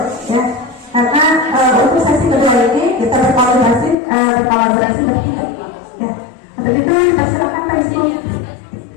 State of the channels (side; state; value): right; drops out; at 4.0 s